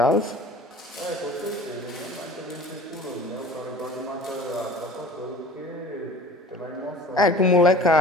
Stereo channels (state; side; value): normal; both; correlation 0.44